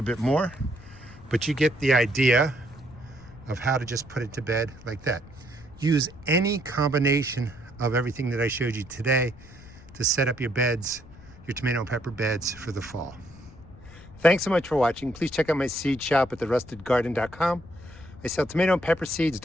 bit more, but you get the idea of how to just put it to bed like that. Use any combination of everything that I showed you today to set up your beds, your tomato and pepper beds for the fall. Thanks so much for watching. Please check out my seed shop at therustedgarden.com. I sell tomato and pepper seeds,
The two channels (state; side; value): noise; left; rumble, 20 dB below the sound